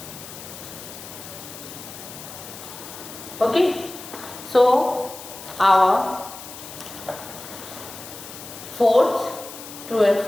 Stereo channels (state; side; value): noise; left; hiss, 13 dB below the sound